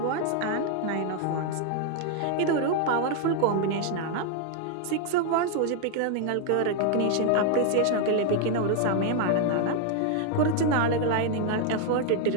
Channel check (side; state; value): both; different; correlation 0.00